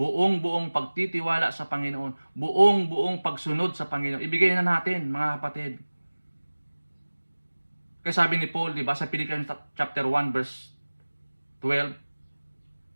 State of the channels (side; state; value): both; inverted; correlation -1.00